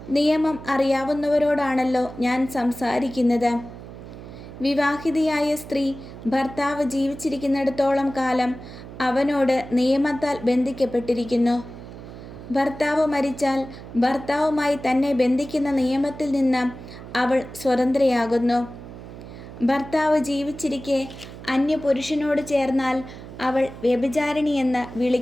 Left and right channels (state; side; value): noise; right; hum, 14 dB below the sound